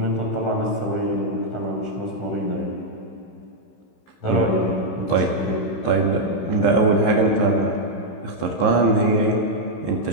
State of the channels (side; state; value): right; late; 16 ms